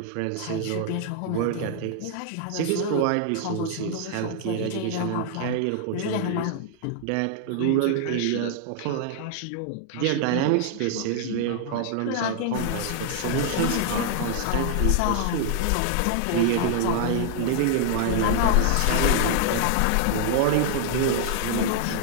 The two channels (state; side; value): different; both; correlation -0.01